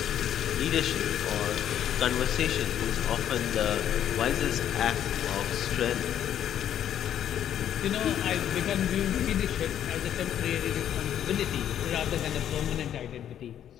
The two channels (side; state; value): right; quieter; 10.3 dB